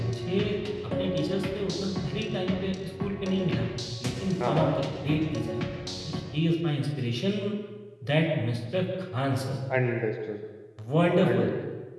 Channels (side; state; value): both; identical; correlation 1.00